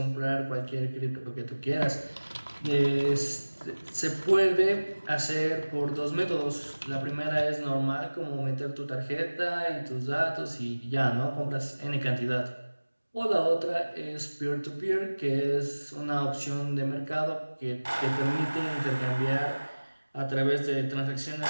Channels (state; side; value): inverted; both; correlation -1.00